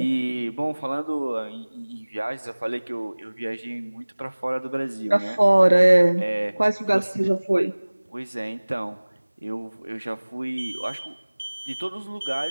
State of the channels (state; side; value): inverted; both; correlation -1.00